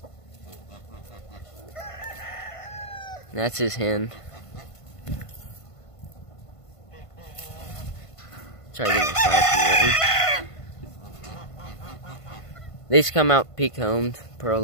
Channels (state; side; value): late; right; 1.5 ms